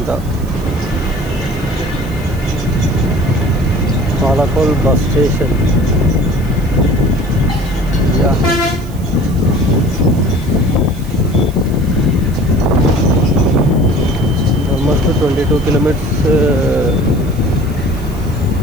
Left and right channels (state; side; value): noise; right; hiss, 23 dB below the sound